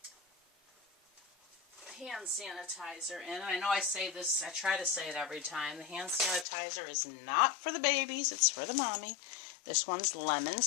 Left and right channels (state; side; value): drops out; right; at 6.5 s